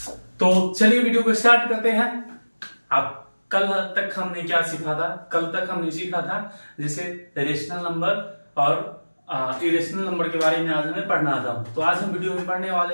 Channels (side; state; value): both; inverted; correlation -1.00